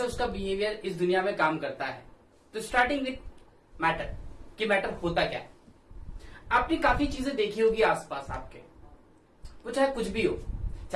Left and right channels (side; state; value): both; identical; correlation 1.00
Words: उसका बिहेवियर इस दुनिया में काम करता है। तो स्टार्टिंग विथ मैटर कि मैटर होता क्या है। आपने काफी चीजें देखी होगी आसपास आपके, वो चाहे कुछ भी हो,